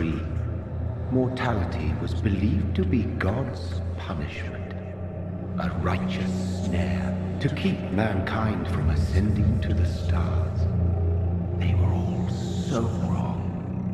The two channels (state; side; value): identical; both; correlation 1.00